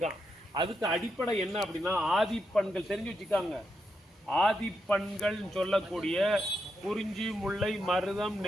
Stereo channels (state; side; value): normal; both; correlation 0.83